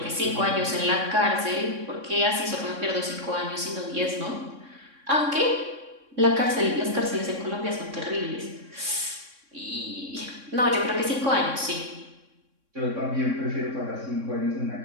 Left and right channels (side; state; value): left; late; 3.6 ms